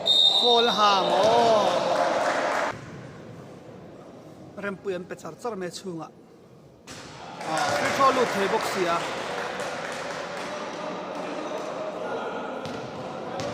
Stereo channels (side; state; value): both; identical; correlation 1.00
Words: fall ham rem pu em pe char char me chunga free throw lu thei box ya